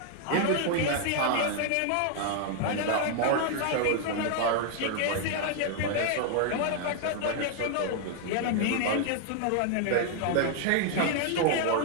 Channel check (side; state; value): both; different; correlation 0.00